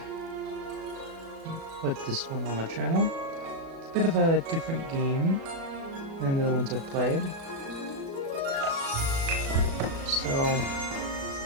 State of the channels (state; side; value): late; left; 36 ms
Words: put this one on the channel. It's a bit of a different game than the other ones I've played. So,